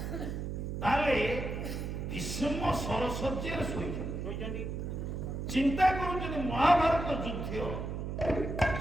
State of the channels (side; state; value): right; noise; hum, 4 dB below the sound